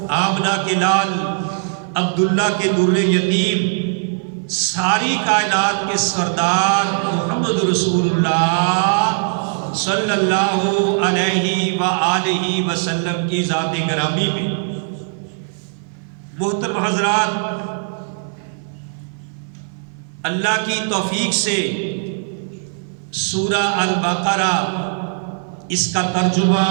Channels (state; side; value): silent; left; 57 dB below the other